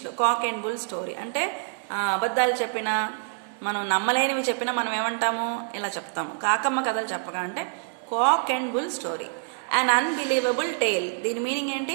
కాక్ అండ్ బుల్ స్టోరీ అంటే అబద్ధాలు చెప్పినా, మనం నమ్మలేనివి చెప్పినా మనం ఏమంటాము, ఇలా చెప్తాము. కాకమ్మ కథలు చెప్పక అంటే cock and bull story. An unbelievable tale. దీని మీనింగ్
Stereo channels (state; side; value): silent; left; digital silence